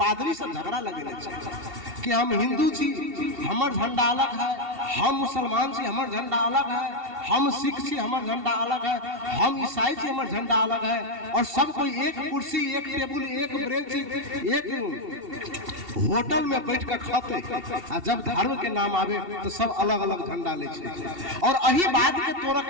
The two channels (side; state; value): left; late; 2.7 ms